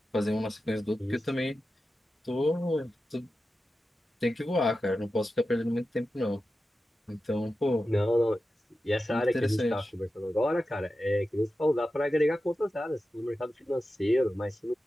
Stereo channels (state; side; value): normal; both; correlation 0.92